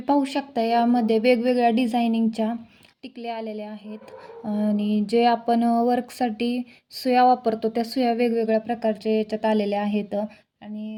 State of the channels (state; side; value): identical; both; correlation 1.00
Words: पाहू शकता यामध्ये वेगवेगळ्या डिझायनिंगच्या टिकल्या आलेल्या आहेत आणि जे आपण वर्कसाठी सुया वापरतो त्या सुया वेगवेगळ्या प्रकारच्या याच्यात आलेल्या आहेत